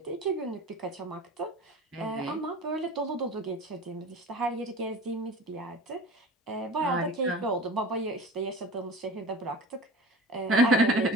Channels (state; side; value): normal; both; correlation 0.36